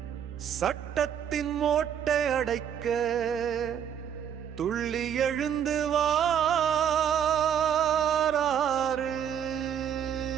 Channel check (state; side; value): quieter; left; 8.8 dB